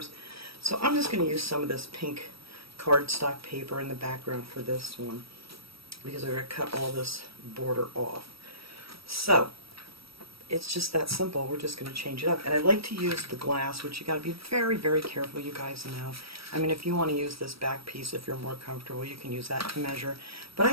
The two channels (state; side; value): late; left; 0.76 ms